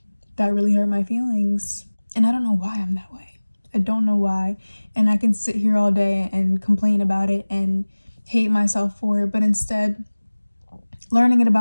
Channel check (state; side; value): inverted; both; correlation -1.00